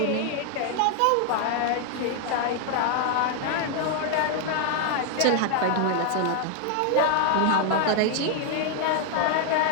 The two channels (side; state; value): both; different; correlation 0.00